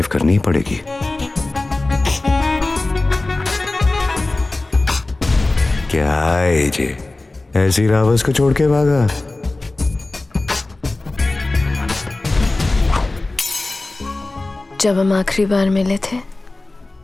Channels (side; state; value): right; quieter; 3.1 dB